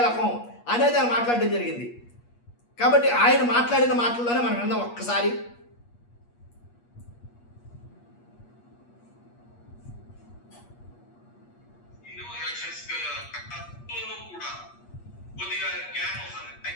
అనేది ఆయన మాట్లాడడం జరిగింది. కాబట్టి ఆయన మాట్లాడిన మాటల్లోనే మనం విందాం ఒక్కసారి.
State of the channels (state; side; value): late; right; 8.4 ms